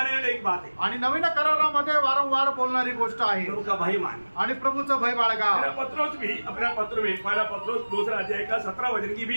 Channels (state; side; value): inverted; both; correlation -1.00